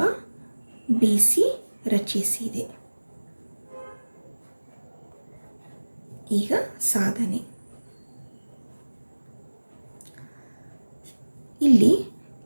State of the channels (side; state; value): both; inverted; correlation -1.00